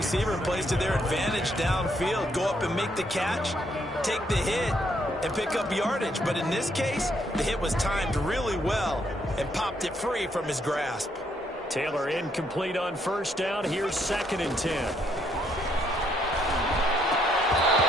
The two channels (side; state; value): both; normal; correlation 0.72